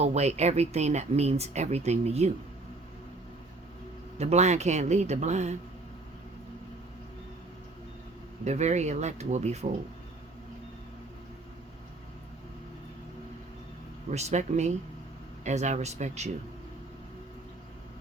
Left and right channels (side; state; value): left; quieter; 3.1 dB